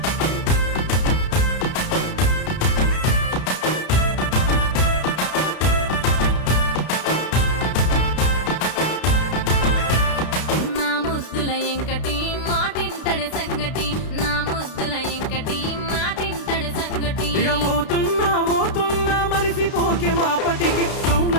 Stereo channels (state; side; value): late; right; 32 ms